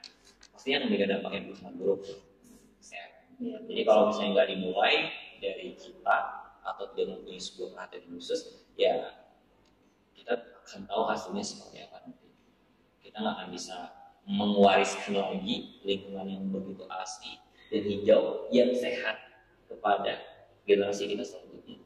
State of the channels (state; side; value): identical; both; correlation 1.00